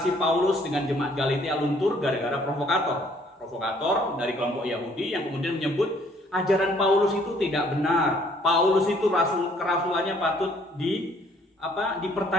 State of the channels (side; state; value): both; normal; correlation 0.62